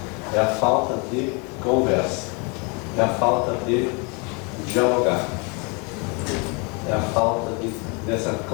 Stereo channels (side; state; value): right; quieter; 32.1 dB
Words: é a falta de conversa, é a falta de dialogar, é a falta dessa